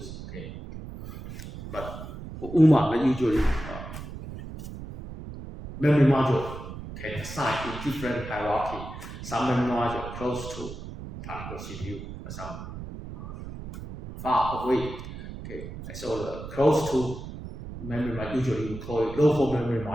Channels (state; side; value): noise; right; rumble, 11 dB below the sound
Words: Okay, but for UMA, usually memory module can assign in different hierarchy. Some memory module close to particular CPU, some far away. Okay, so the close to memory module usually we call it local memory